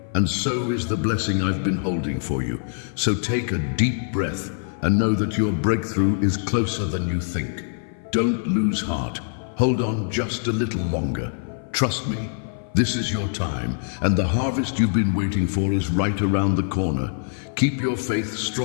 and so is the blessing I've been holding for you. So take a deep breath and know that your breakthrough is closer than you think. Don't lose heart. Hold on just a little longer. Trust me. This is your time, and the harvest you've been waiting for is right around the corner. Keep your faith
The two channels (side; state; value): right; silent; 56 dB below the other